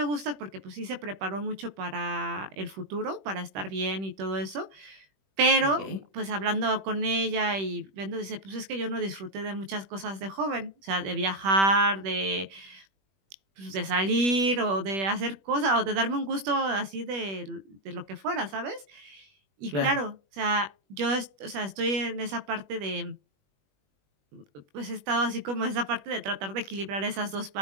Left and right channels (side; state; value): left; late; 21 ms